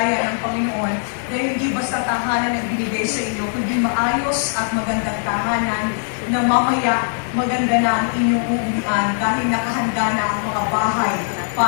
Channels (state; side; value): silent; right; digital silence